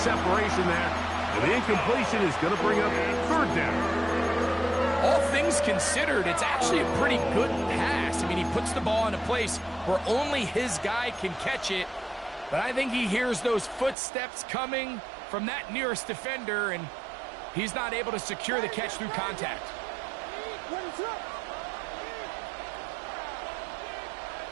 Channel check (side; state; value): left; drops out; at 14.0 s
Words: there. And the incompletion is going to bring up third down. all things considered, it's actually a pretty good pass. I mean, he puts the ball in a place where only his guy can catch it. But I think he hears those footsteps coming from that nearest defender, and he's not able to secure the catch through contact.